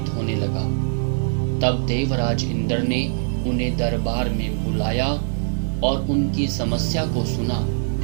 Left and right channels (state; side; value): silent; left; digital silence